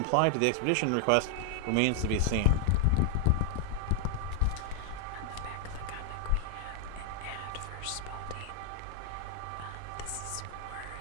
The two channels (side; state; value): both; different; correlation 0.00